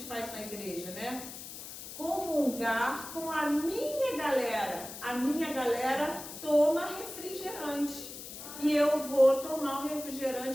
faz na igreja, né? Comungar com a minha galera. A minha galera toma refrigerante. E eu vou tomar um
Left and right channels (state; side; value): noise; left; hiss, 11 dB below the sound